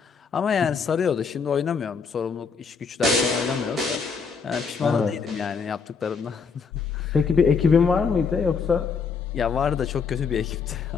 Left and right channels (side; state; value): right; quieter; 5.5 dB